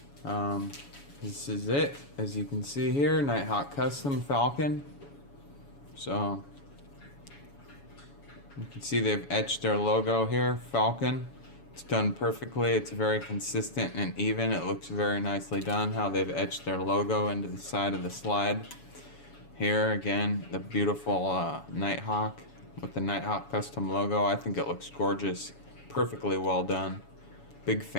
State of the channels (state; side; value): late; right; 7.1 ms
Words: This is it, as you can see here, Nighthawk custom Falcon. So you can see they've etched their logo here, Falcon. It's done perfectly. It's very consistent and even. It looks very nicely done how they've etched their logo into the side of the slide. Here again, the beautiful Nighthawk with the Nighthawk custom logo. I think it looks gorgeous, perfectly well done. Big